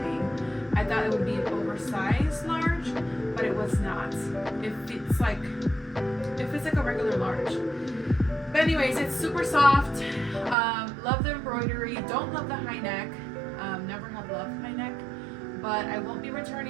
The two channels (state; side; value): drops out; left; at 10.6 s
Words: I thought it would be an oversized large, but it was not. It fits like a regular large. But anyways, it's super soft. Love the embroidery. Don't love the high neck. Never have loved high neck, but I won't be